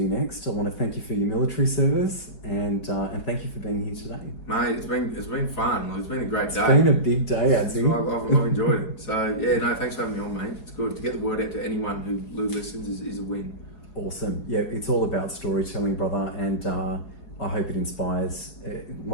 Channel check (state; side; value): late; right; 4.8 ms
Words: next. I want to thank you for your military service and thank you for being here today. Mate, it's been fun. It's been a great day. It's been a big day, Adzi. I've enjoyed it. So yeah, no, thanks for having me on, mate. It's good to get the word out to anyone who listens is a win. Awesome. Yeah, it's all about storytelling, brother, and I hope it inspires